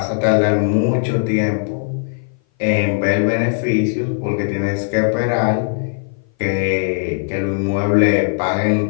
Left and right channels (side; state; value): right; silent; 58 dB below the other